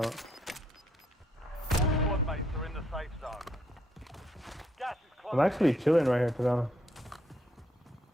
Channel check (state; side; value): normal; both; correlation 0.73